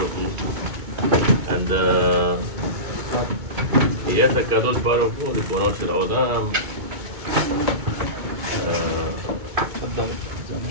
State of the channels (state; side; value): late; left; 2.2 ms